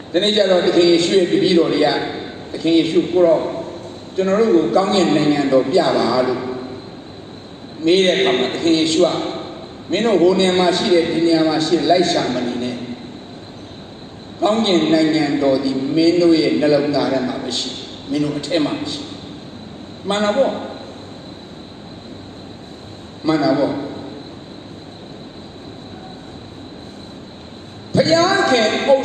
The nature of the king issued the Bidoria, the king issued Puro, General Gangian Nanyando, Biava, made a come at the king Ishua, Mino Honia Mashi, Dinia Mashi, Laisha Manine, Gangian Nanyando, the Menoe, Nelonga Mabashi, Mino Temashi. Manavo. Payanke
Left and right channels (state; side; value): identical; both; correlation 1.00